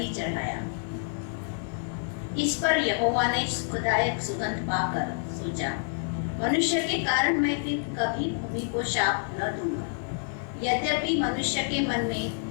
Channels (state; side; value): silent; right; digital silence